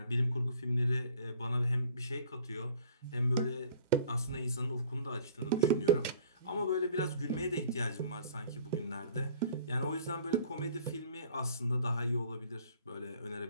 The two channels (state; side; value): inverted; both; correlation -0.52